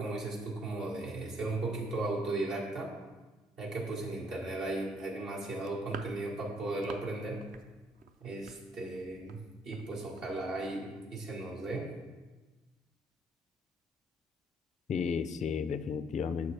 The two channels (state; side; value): normal; both; correlation 0.66